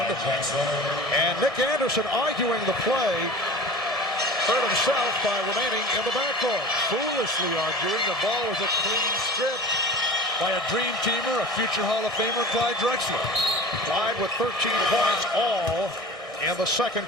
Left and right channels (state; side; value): normal; both; correlation 0.38